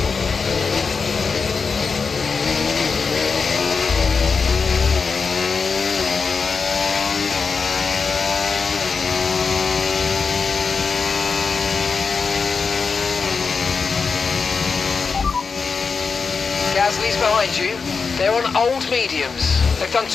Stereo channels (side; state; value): right; quieter; 5.1 dB